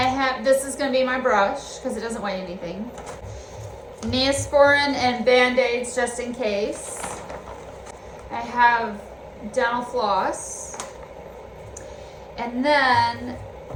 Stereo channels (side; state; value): both; identical; correlation 1.00